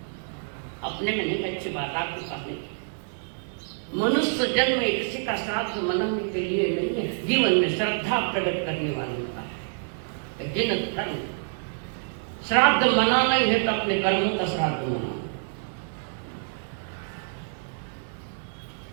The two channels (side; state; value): left; silent; digital silence